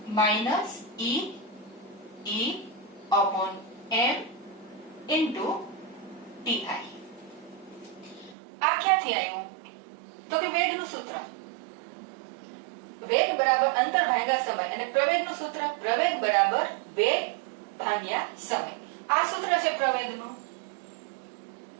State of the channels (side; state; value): left; drops out; at 8.3 s